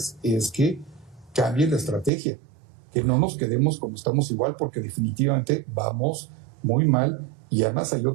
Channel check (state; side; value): drops out; left; at 2.1 s